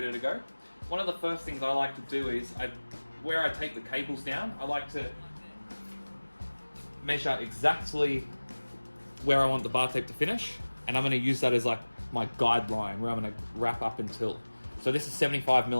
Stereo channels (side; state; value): both; inverted; correlation -1.00